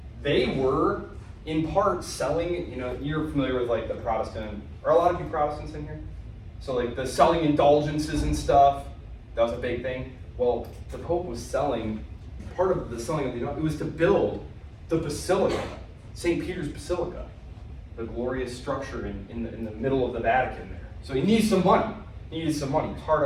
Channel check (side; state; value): both; identical; correlation 1.00